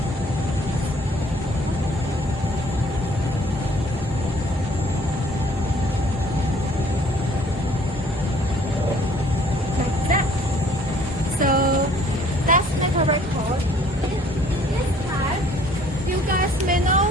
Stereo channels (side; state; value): both; normal; correlation 0.58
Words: like that. So let's make a record. In this time, you guys may